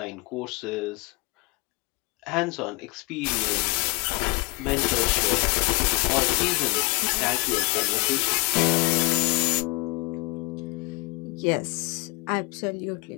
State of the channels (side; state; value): right; quieter; 27.1 dB